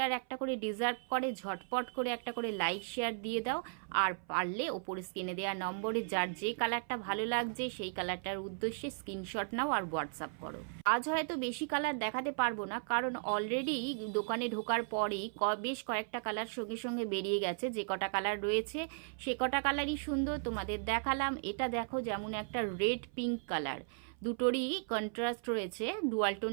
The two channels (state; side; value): silent; left; 54 dB below the other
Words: একটা করে ডিজার্ভ করে। ঝটপট করে একটা করে লাইক শেয়ার দিয়ে দাও, আর পারলে ওপরে স্ক্রিনে দেওয়া নম্বরে যার যে কালারটা ভালো লাগছে সেই কালারটার উদ্দেশ্যে স্ক্রিনশট নাও আর হোয়াটসঅ্যাপ করো। আজ হয়তো বেশি কালার দেখাতে পারবো না, কারণ অলরেডি দোকানে ঢোকার পরেই বেশ কয়েকটা কালার সঙ্গে সঙ্গে বেরিয়ে গেছে। যে কটা কালার রয়েছে সে কটা কালারই সুন্দর তোমাদের দেখালাম। এটা দেখো, যেমন একটা রেড পিঙ্ক কালার, দুটোরই কন্ট্রাস্ট রয়েছে ডুয়াল